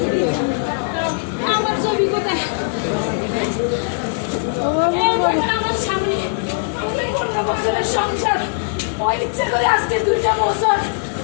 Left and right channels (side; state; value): right; silent; digital silence